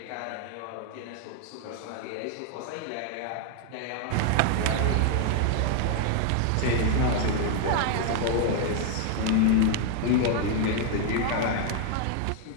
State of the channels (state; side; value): different; both; correlation 0.00